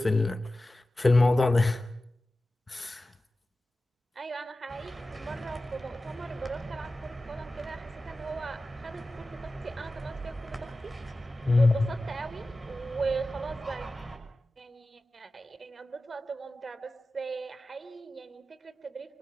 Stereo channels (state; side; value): normal; both; correlation 0.95